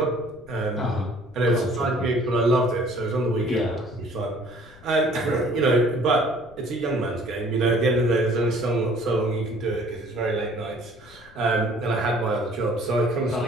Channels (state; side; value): noise; left; rumble, 24 dB below the sound